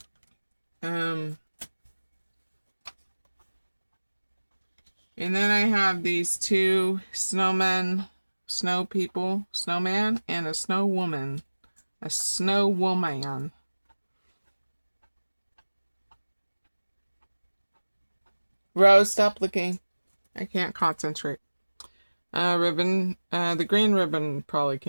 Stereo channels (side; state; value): both; inverted; correlation -1.00